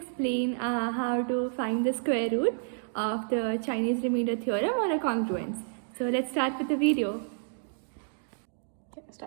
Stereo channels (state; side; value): silent; left; digital silence